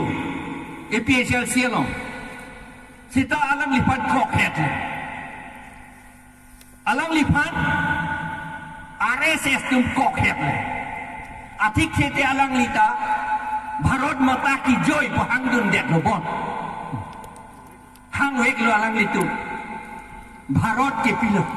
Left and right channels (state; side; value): identical; both; correlation 1.00